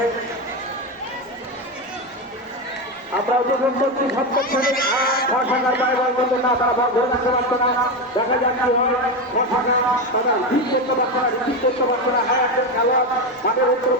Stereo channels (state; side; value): normal; both; correlation 0.14